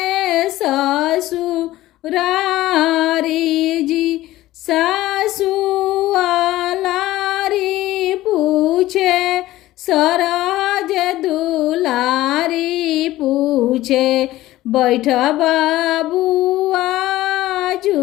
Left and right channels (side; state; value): right; quieter; 16.0 dB